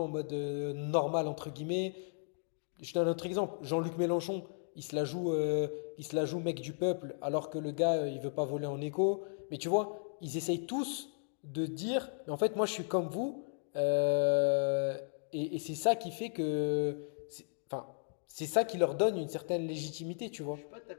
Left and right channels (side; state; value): right; silent; digital silence